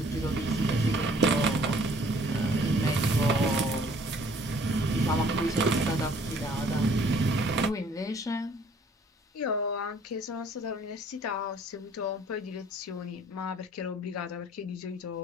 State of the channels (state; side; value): normal; both; correlation 0.58